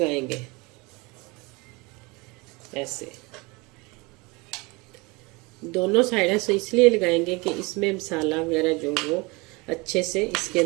ऐसे, दोनों साइड से इसलिए लगाएंगे कि इसमें मसाला वगैरह जो वो अच्छे से इसके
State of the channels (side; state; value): left; quieter; 25.9 dB